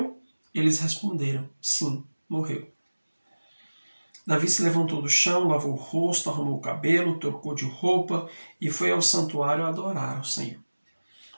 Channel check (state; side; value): inverted; both; correlation -1.00